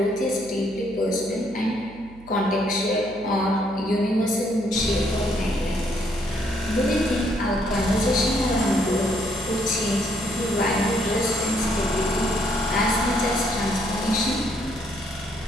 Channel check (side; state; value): right; noise; hum, 21 dB below the sound